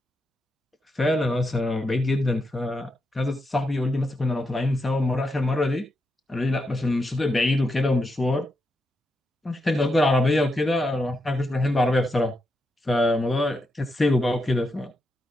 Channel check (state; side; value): normal; both; correlation 0.84